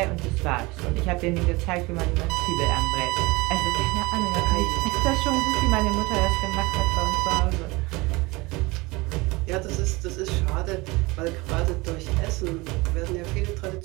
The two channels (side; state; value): left; quieter; 23.5 dB